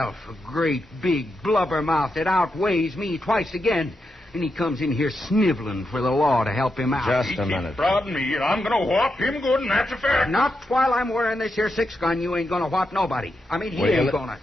A great, big blubbermouth that outweighs me twice again. And he comes in here sniveling for the law to help him out. Just He a keeps minute. prodding me, and I'm going to whop him good, and that's a fact. Not while I'm wearing this here 6-gun. You ain't going to whop nobody. I mean, he Will you ain't let- going to.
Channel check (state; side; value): normal; both; correlation 0.86